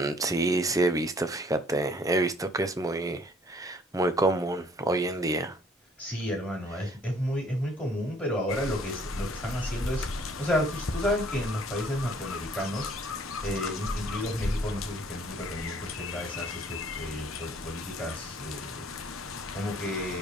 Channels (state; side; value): normal; both; correlation 0.59